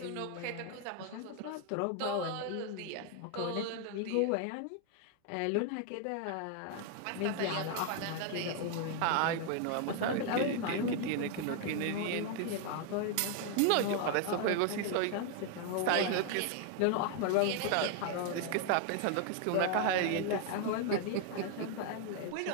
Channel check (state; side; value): different; both; correlation 0.00